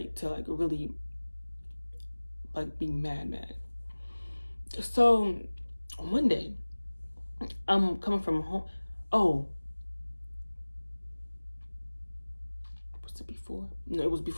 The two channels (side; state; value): both; inverted; correlation -1.00